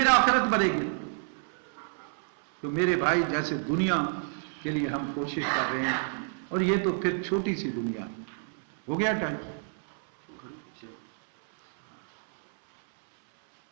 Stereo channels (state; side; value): silent; left; 58 dB below the other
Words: آخرت بنے گی. تو میرے بھائی، جیسے دنیا کے لیے ہم کوشش کر رہے ہیں، اور یہ تو پھر چھوٹی سی دنیا. ہو گیا ٹائم؟